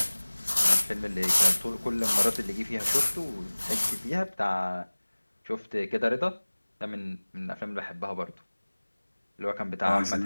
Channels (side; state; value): both; inverted; correlation -1.00